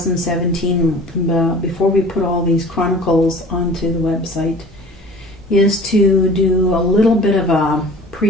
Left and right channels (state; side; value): normal; both; correlation 0.45